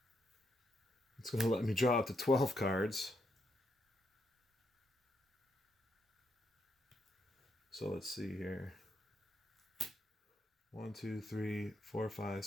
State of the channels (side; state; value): both; normal; correlation 0.79